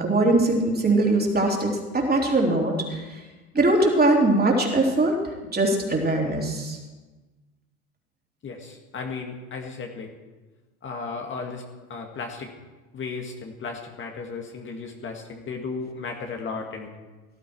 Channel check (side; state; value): both; normal; correlation 0.45